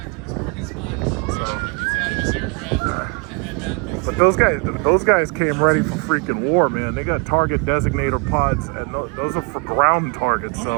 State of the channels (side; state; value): left; quieter; 32.5 dB